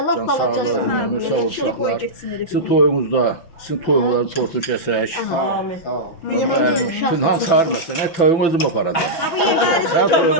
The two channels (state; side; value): late; right; 6.0 ms